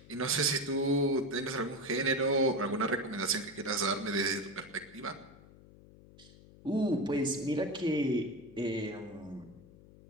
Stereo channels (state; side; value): noise; left; hum, 22 dB below the sound